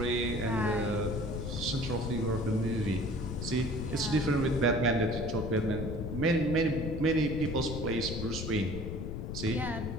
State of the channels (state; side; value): noise; left; rumble, 5 dB below the sound